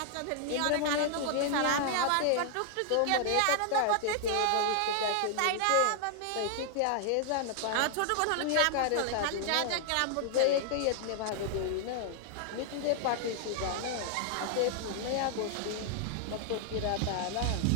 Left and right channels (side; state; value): both; different; correlation 0.00